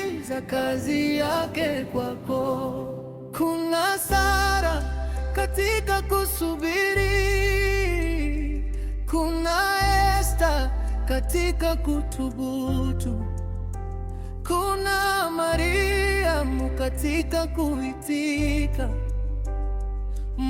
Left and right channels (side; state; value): both; identical; correlation 1.00